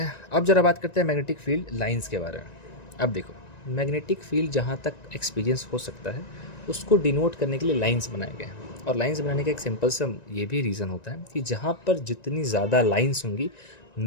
अब जरा बात करते हैं मैग्नेटिक फील्ड लाइंस के बारे में। अब देखो, मैग्नेटिक फील्ड जहाँ तक एक्सपीरियंस हो सकता है उसको डिनोट करने के लिए लाइंस बनाए गए हैं, और लाइंस बनाने का एक सिंपल सा ये भी रीज़न होता है कि जहाँ पर जितनी ज़्यादा लाइंस होंगी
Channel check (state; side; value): late; right; 1.9 ms